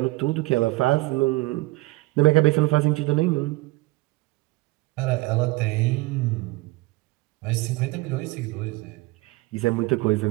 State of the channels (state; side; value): quieter; left; 20.9 dB